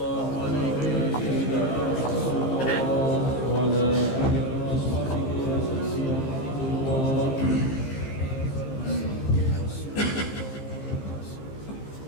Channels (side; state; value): right; late; 15 ms